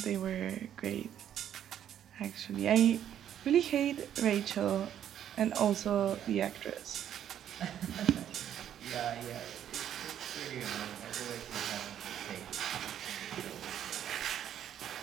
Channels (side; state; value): left; quieter; 10.2 dB